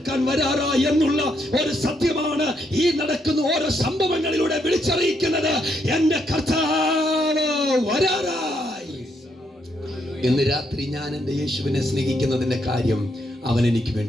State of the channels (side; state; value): both; normal; correlation 0.76